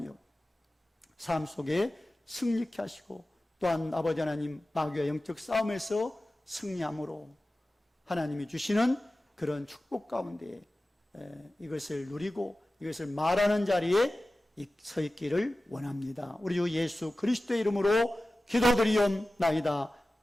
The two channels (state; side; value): normal; both; correlation 0.96